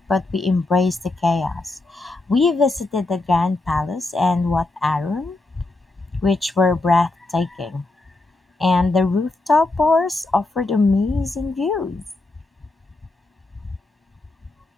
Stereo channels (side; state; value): right; quieter; 3.0 dB